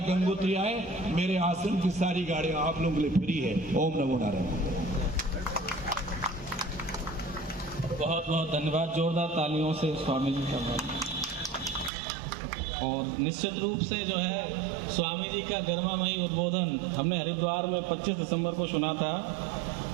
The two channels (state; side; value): drops out; left; at 11.9 s